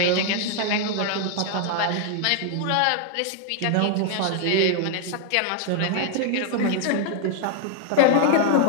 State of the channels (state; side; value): different; both; correlation 0.00